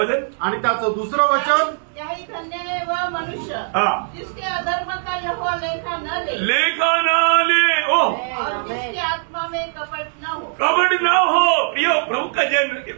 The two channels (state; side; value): silent; left; digital silence